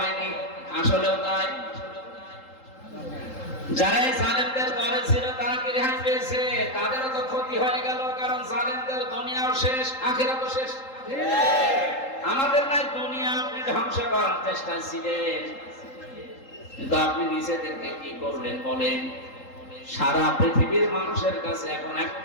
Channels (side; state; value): right; late; 3.8 ms